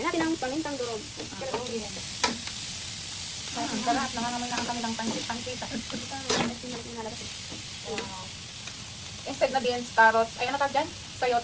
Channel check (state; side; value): identical; both; correlation 1.00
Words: natin ang pamintang durog. Ang sarap. Nangangamoy na ang kanilang pansit-pansita. Wow. Instead na beans, carrots. Ayun na dyan.